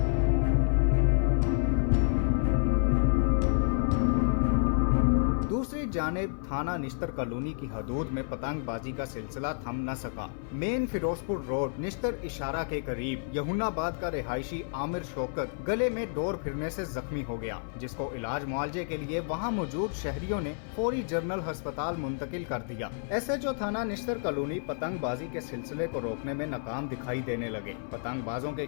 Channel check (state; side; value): silent; right; 56 dB below the other